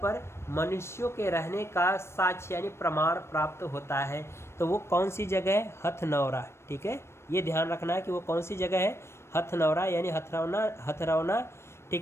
पर मनुष्यों के रहने का साक्ष्य यानी प्रमाण प्राप्त होता है। तो वो कौन सी जगह है? हथनौरा। ठीक है, ये ध्यान रखना है कि वो कौन सी जगह है? हथनौरा यानी हथरौना।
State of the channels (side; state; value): right; late; 0.13 ms